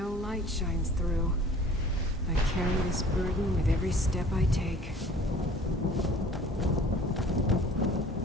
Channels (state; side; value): normal; both; correlation 0.49